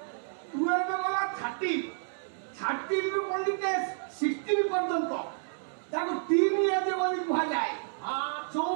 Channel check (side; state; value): left; silent; digital silence